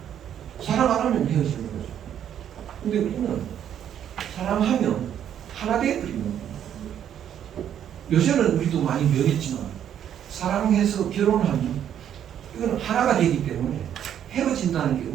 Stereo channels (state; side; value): quieter; left; 9.8 dB